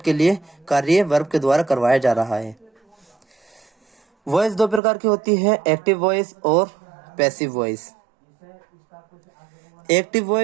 के लिए कार्य वर्ब के द्वारा करवाया जा रहा है। वॉइस दो प्रकार की होती है, एक्टिव वॉइस और passive voice. Active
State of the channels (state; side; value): drops out; left; at 4.8 s